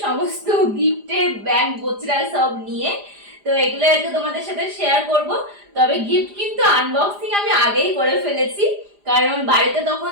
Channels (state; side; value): late; left; 4.9 ms